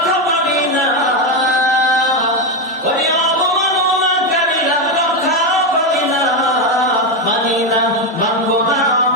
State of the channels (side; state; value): both; normal; correlation 0.09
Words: পাবি না ওরে অবমাননাকারীরা রক্ষা পাবি না মানি না মানব না